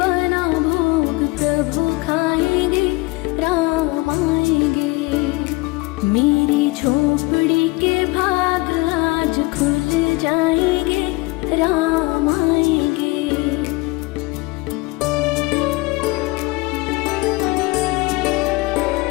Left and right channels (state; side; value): quieter; right; 24.1 dB